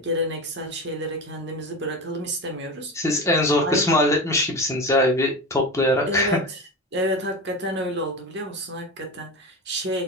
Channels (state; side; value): normal; both; correlation 0.25